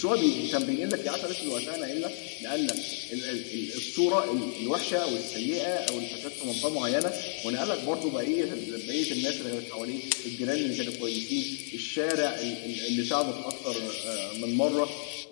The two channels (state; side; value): silent; right; digital silence